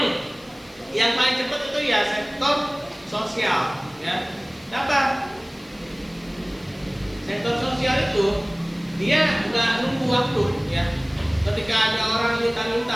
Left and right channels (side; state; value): left; noise; hiss, 27 dB below the sound